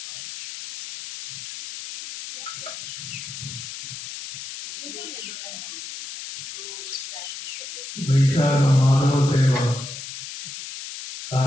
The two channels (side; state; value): left; noise; hiss, 9 dB below the sound